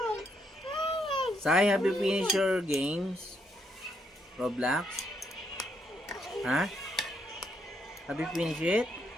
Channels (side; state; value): both; normal; correlation 0.75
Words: Sai, have you finished your games? Roblox? Ha? Have you finished it?